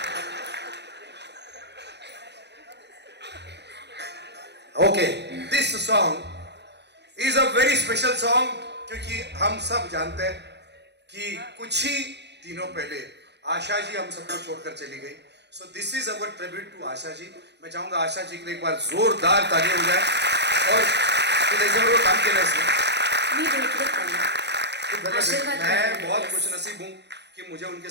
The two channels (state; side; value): late; left; 0.50 ms